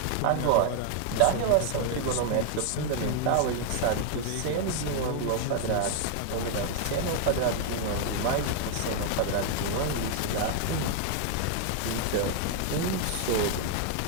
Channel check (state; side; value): different; both; correlation 0.00